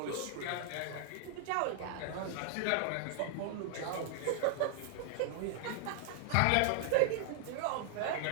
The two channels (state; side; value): different; both; correlation 0.00